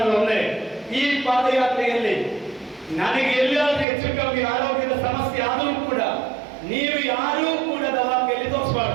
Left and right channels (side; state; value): left; drops out; at 3.9 s